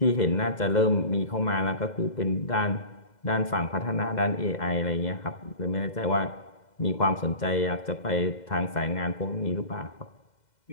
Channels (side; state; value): right; late; 2.0 ms